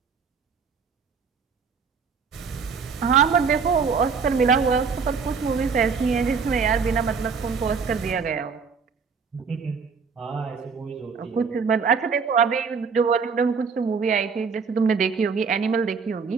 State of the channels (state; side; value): quieter; left; 5.6 dB